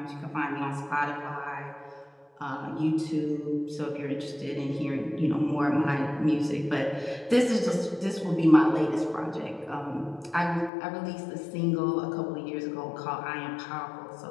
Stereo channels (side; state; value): right; drops out; at 10.7 s